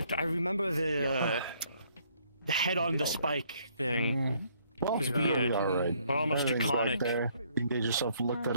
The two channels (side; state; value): both; inverted; correlation -0.66